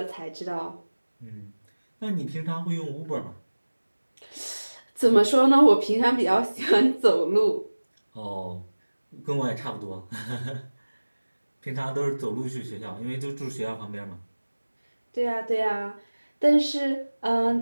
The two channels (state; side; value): inverted; both; correlation -1.00